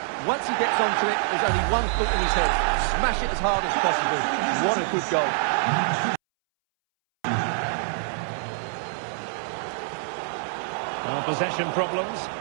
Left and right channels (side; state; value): left; silent; 61 dB below the other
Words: Once he gets onto it, there's only one foot in his head. Smash it as hard as possible. What a good goal. Well, possession problems.